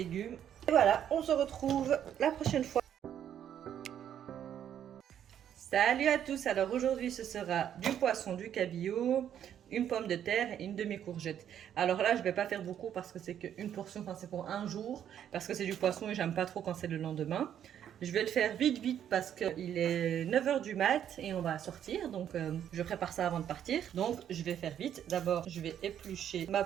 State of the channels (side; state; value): left; quieter; 9.8 dB